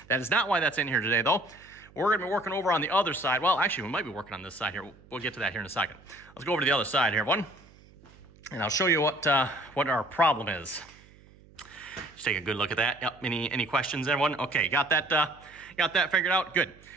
That is not why that's in here today, though. We're going to be working over on the other side. Well, actually, we might be working on this side here. We'll get to that here in a second. Let's go over to the other side here, everyone, and I'll show you what our problem is. Just take a good look at that. Yep. Any questions, everyone? Okay, got that figured out? Good.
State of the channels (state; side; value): noise; right; hum, 25 dB below the sound